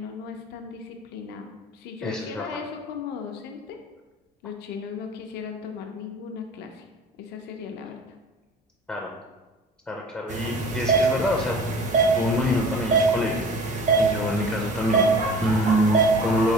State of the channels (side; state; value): both; normal; correlation 0.42